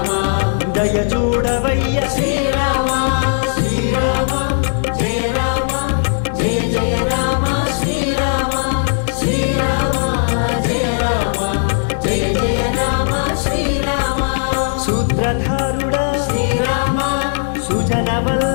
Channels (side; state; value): right; silent; digital silence